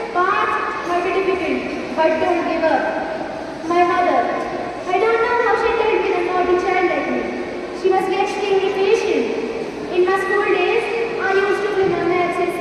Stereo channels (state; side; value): noise; left; hum, 29 dB below the sound